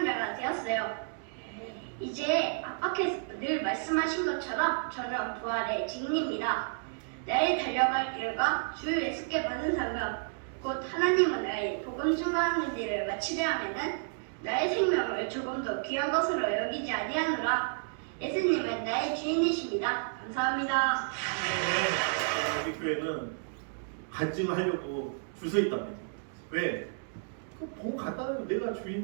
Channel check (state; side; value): silent; left; digital silence